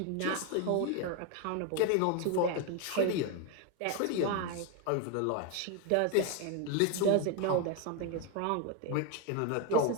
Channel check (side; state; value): both; different; correlation 0.01